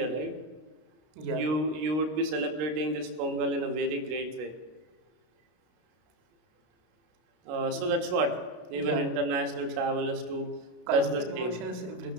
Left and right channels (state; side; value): late; left; 33 ms